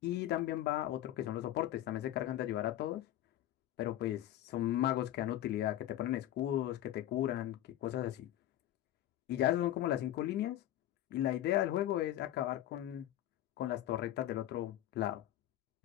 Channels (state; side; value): quieter; right; 13.1 dB